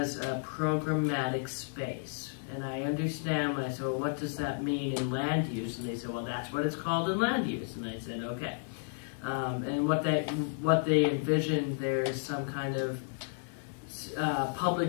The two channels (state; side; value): silent; right; digital silence